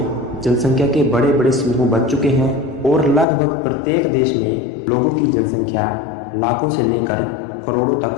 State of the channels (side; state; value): right; drops out; at 3.2 s